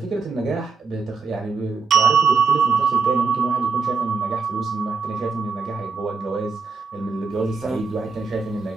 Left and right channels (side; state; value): left; quieter; 4.8 dB